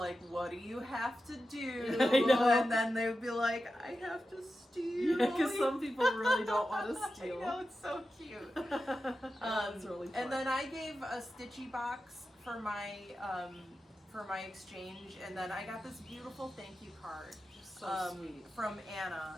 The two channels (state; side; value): normal; both; correlation 0.91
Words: "What do you have to do?" I know. And then they would be like, "I have to steal." Yeah, because some people really don't want to steal. I know, it's so cute. That's really fun. And then I gave a stitchy box for my exchange, and then I got this beautiful thank you card so sweet. from